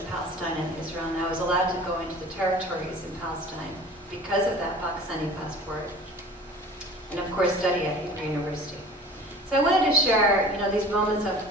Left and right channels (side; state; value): both; normal; correlation 0.43